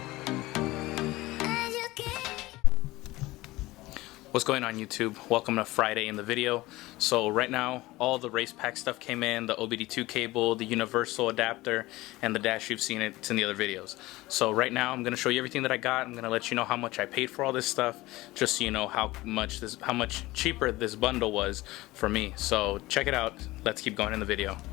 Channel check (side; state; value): right; quieter; 19.2 dB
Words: What's going on, YouTube? Welcome to Friday in the video. So right now all the RacePac stuff came in, the OBD2 cable, the universal adapter, and the dash. You've seen it, it's in the other videos. So right now I'm going to show you everything that I got. I'm going to let you know how much I paid for all this stuff, just so you know how much cheaper this bundle was for me. So check it out. Let's keep going in the video.